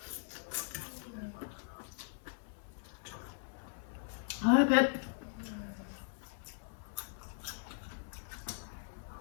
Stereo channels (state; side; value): silent; right; 52 dB below the other